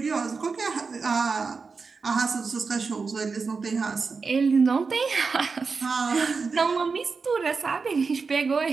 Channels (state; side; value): quieter; left; 4.8 dB